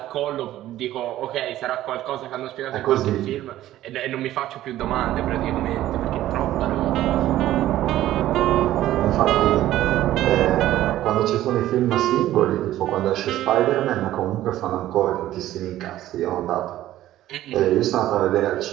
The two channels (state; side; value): quieter; left; 13.9 dB